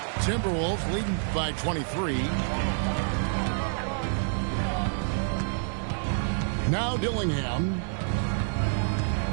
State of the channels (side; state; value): left; silent; 58 dB below the other